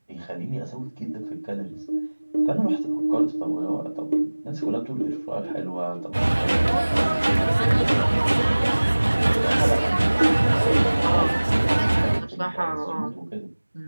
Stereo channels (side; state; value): both; inverted; correlation -1.00